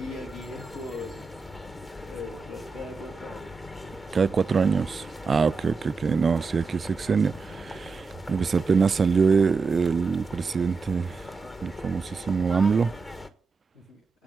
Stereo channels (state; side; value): quieter; left; 4.7 dB